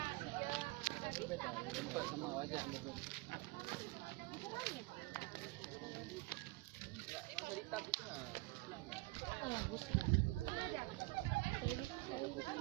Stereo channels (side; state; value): left; quieter; 21.9 dB